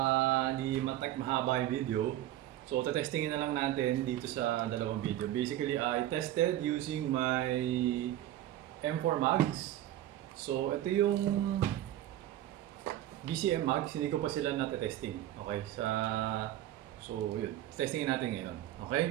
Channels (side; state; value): left; quieter; 13.4 dB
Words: hindi mahaba yung video. So, testingin na lang natin dito sa dalawang video. Basically, I tested using my M4 mags. So, ito yung BCM mags. Hindi ko pa sila natetesting. Okay? So, yun. Testingin natin ngayon.